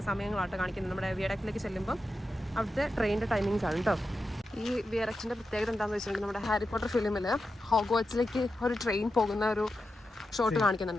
സമയങ്ങളാട്ടോ കാണിക്കുന്നത്. നമ്മുടെ വിയാഡക്റ്റിലേക്ക് ചെല്ലുമ്പോൾ അവിടുത്തെ ട്രെയിനിൻ്റെ ടൈമിങ്സ് ആണ് കേട്ടോ. ഈ വിയാഡക്റ്റിൻ്റെ പ്രത്യേകത എന്താണെന്ന് വെച്ചിട്ടുണ്ടെങ്കിൽ നമ്മുടെ ഹാരി പോട്ടർ ഫിലിമിൽ ഹോഗ്വാർട്സിലേക്ക് ഒരു ട്രെയിൻ പോകുന്ന ഒരു ഷോട്ട്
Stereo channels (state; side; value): normal; both; correlation 0.89